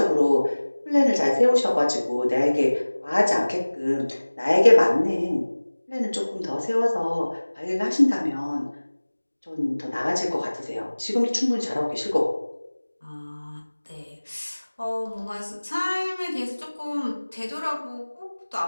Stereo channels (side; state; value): both; inverted; correlation -1.00